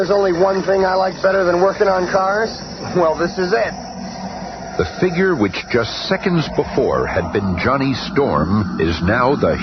only one thing I like better than working on cars? Well, this is it. The figure which just seconds before had been Johnny Storm is now the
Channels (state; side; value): identical; both; correlation 1.00